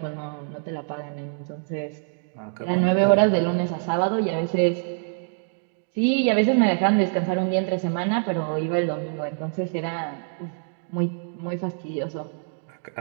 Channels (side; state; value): left; silent; digital silence